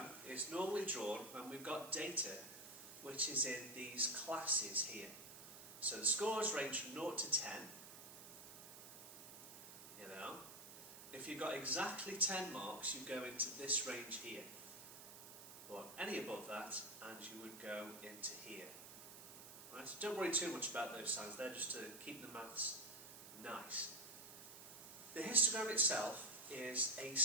is normally drawn when we've got data which is in these classes here. So the scores range from 0 to 10. If you've got exactly 10 marks, you go into this range here. Or any above that, and you would go into here. Right, so don't worry too much about those signs, they're just to keep the maths nice. The histogram itself is a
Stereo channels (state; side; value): noise; right; hiss, 14 dB below the sound